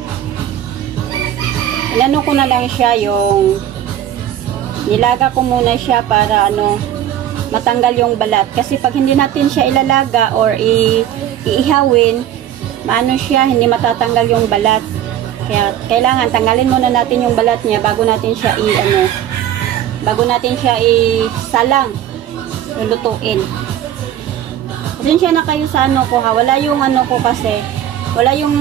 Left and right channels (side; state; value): left; quieter; 11.1 dB